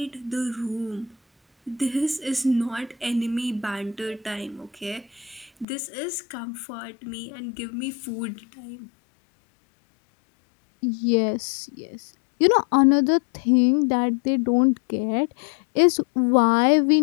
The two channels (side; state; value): right; drops out; at 5.7 s